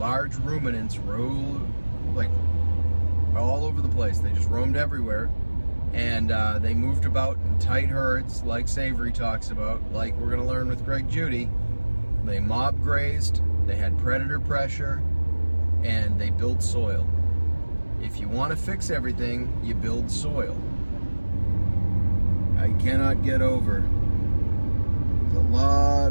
ruminants roamed like all over the place. They just roamed everywhere, and they moved about in tight herds, like Savory talks about, like we're going to learn with Greg Judy. They mob grazed, they had predator pressure, and they built soil. If you want to fix everything, you build soil. I cannot get over, there's a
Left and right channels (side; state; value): both; inverted; correlation -1.00